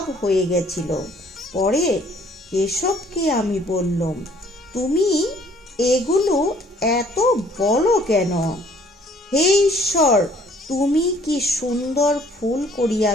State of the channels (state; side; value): normal; both; correlation 0.59